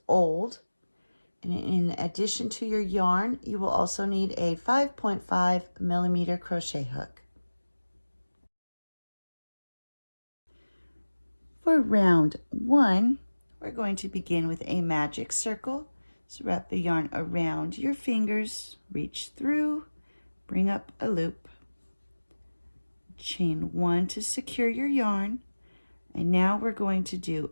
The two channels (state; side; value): inverted; both; correlation -1.00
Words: old. And in addition to your yarn, you will also need a 5.5 millimeter crochet hook. For round 1, we're going to begin with a magic circle. So wrap the yarn around your fingers, reach through, bring up a loop, chain 1 to secure your yarn, and now we're going to